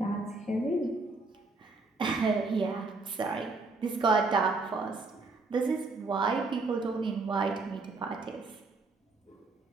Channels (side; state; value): left; quieter; 3.6 dB